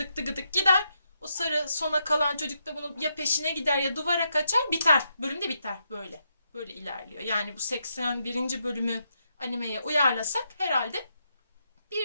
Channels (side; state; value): both; inverted; correlation -0.81